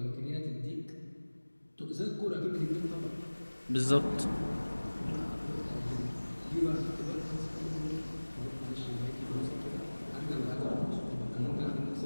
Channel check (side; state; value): both; inverted; correlation -1.00